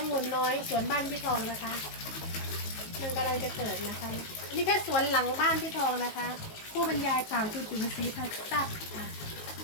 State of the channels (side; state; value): right; late; 19 ms